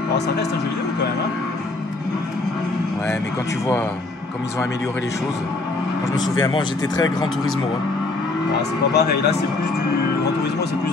Alors ça reste un jeu vidéo quand même. Hein. Ouais mais quand tu vois comme ils ont amélioré les choses... Moi je me souviens, moi j'étais très Gran Turismo. Hein. Ah, c'est pas pareil, là c'est plus du Gran Turismo, c'est plus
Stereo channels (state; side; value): quieter; right; 3.2 dB